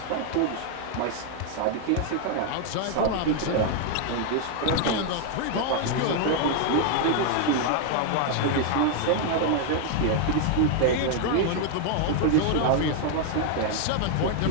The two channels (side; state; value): both; different; correlation 0.00